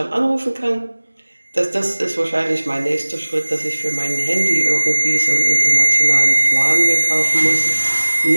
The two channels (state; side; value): inverted; both; correlation -1.00